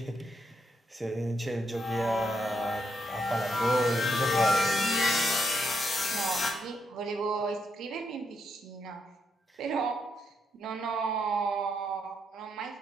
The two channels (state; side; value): normal; both; correlation 0.79